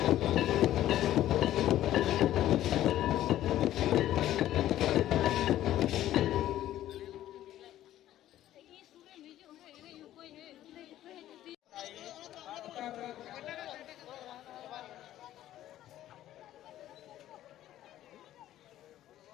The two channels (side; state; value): right; quieter; 13.1 dB